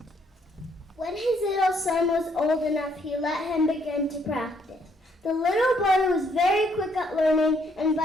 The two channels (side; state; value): both; normal; correlation 0.69